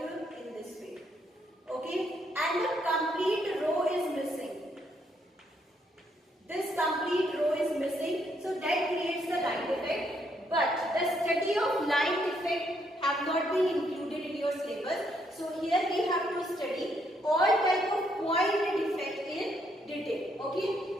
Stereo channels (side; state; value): both; normal; correlation 0.73